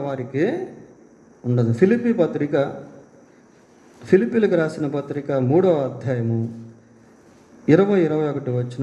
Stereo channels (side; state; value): both; identical; correlation 1.00